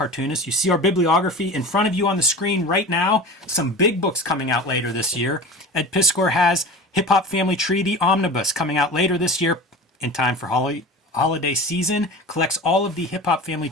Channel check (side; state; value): both; normal; correlation 0.34